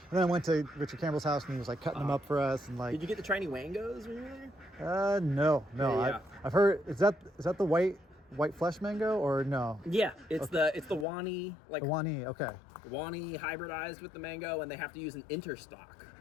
And then I went to Richard Campbell's house and he was like cutting them up for us. And like, Did you get the tiny wangos when you were there? No. Yeah. I've heard. Is that the white flesh mango or no? Yeah, it's the Wani, like The Wani. Okay. Wani hybridized with the mango, and they have to use an interstock.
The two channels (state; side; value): drops out; right; at 11.1 s